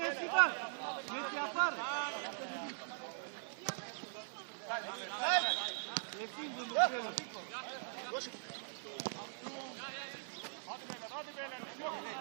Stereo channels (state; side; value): silent; left; digital silence